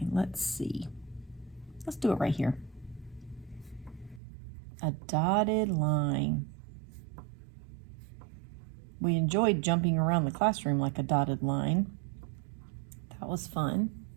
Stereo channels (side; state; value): left; drops out; at 4.2 s